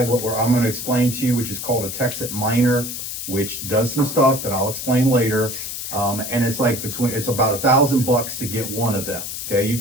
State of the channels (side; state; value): left; noise; hiss, 6 dB below the sound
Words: what I'm going to explain to you, which is called a Texit miner, which does some stuff that I'll explain later. And it's like it's about $1,000 to get one of them. Okay. You